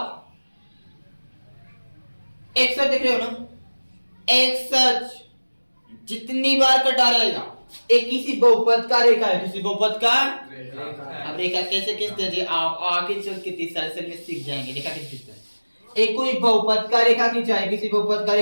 एक्स देख रहे हो ना, एक्स जितनी बार कटा रहेगा, एक किसी बहुपद का रेखा है, किसी बहुपद का रेखा। अब रेखा कैसे खींचते हैं, आप आगे चल के 30 साल से में सीख जाएंगे रेखा कैसे खींचते हैं। एक कोई बहुपद का रेखा खींचा है, किसी बहुपद का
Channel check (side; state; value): both; inverted; correlation -1.00